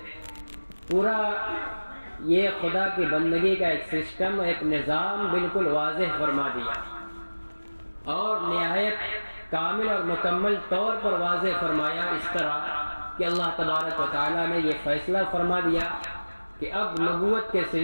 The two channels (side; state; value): both; inverted; correlation -1.00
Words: پورا یہ خدا کی بندگی کا ایک سسٹم، ایک نظام بالکل واضح فرما دیا اور نہایت کامل اور مکمل طور پر واضح فرمایا، اس طرح کہ اللہ تبارک و تعالیٰ نے یہ فیصلہ فرما دیا کہ اب نبوت کے